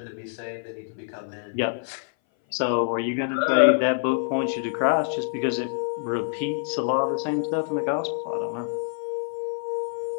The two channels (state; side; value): silent; right; 58 dB below the other